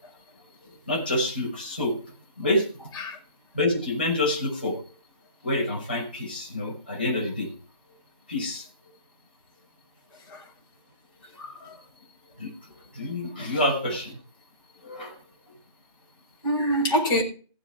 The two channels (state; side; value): inverted; both; correlation -0.37